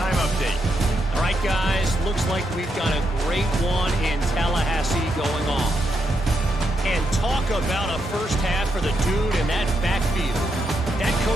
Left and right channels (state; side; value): normal; both; correlation 0.81